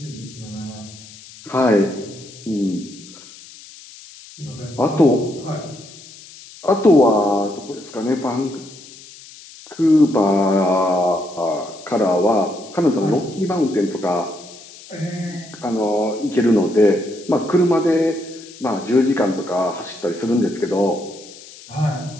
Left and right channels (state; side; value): noise; left; hiss, 19 dB below the sound